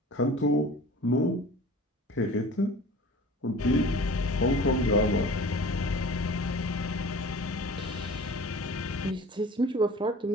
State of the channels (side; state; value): both; normal; correlation 0.42